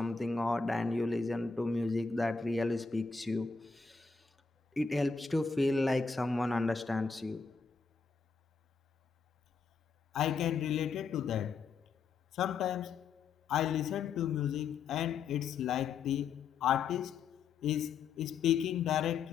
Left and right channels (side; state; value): right; quieter; 5.2 dB